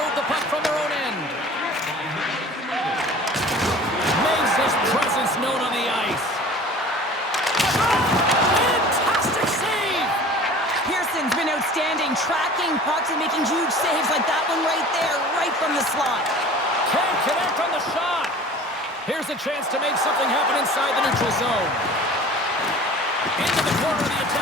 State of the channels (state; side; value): normal; both; correlation 0.43